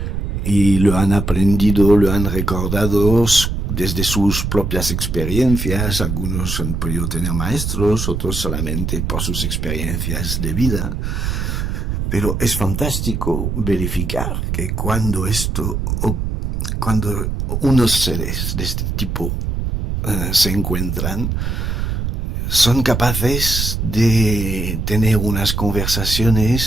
y lo han aprendido, lo han recordado desde sus propias experiencias. Algunos han podido tener maestros, otros solamente por sus experiencias de vida. Pero es fantástico verificar que cuando unos seres de este tipo se encuentran, son capaces de tener unas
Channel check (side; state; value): right; noise; rumble, 2 dB below the sound